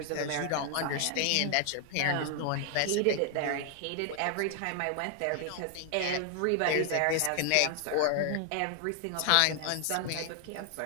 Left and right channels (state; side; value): different; both; correlation 0.00